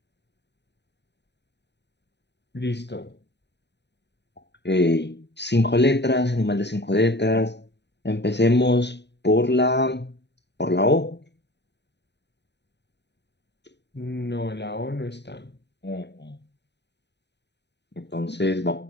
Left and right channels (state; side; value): late; right; 0.50 ms